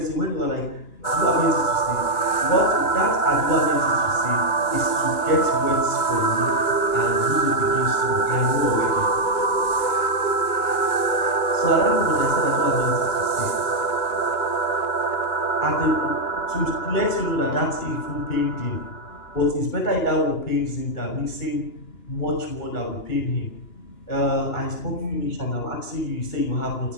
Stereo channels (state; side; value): late; right; 2.9 ms